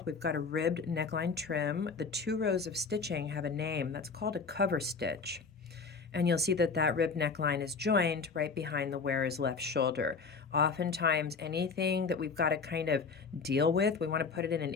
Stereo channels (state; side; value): quieter; right; 4.9 dB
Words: We've got a ribbed neckline trim. The 2 rows of stitching have a name. That's called a cover stitch. And you'll see that that rib neckline is joined right behind the wearer's left shoulder. Oftentimes, anything that we've got to kind of deal with, we want to put it in an